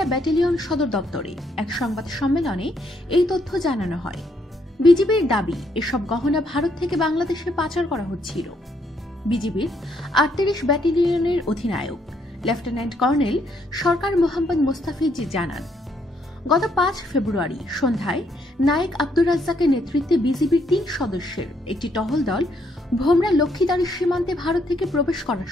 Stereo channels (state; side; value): normal; both; correlation 0.72